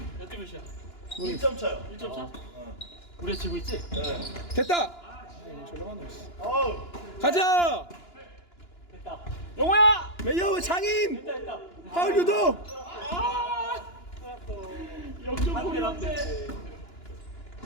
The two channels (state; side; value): late; right; 2.9 ms